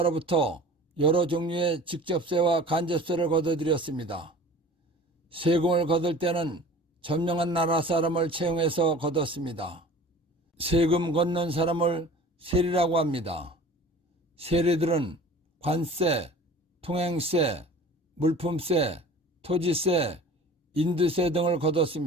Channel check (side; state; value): both; normal; correlation 0.43